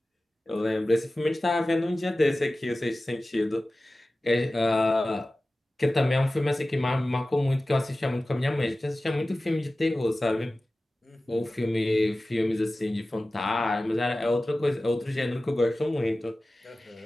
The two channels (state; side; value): normal; both; correlation 0.96